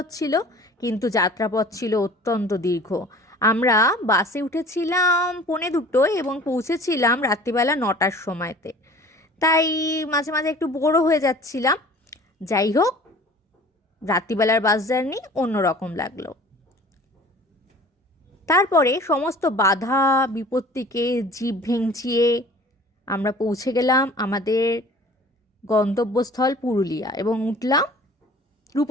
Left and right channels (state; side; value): normal; both; correlation 0.46